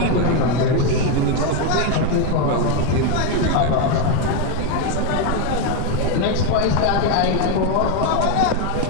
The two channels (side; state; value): both; different; correlation 0.02